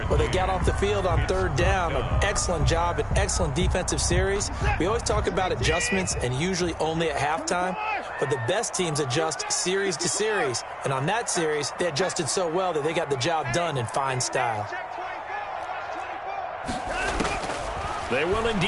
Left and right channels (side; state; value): both; identical; correlation 1.00